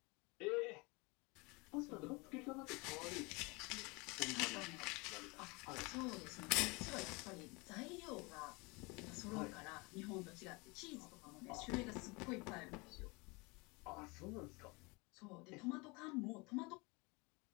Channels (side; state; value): right; quieter; 27.3 dB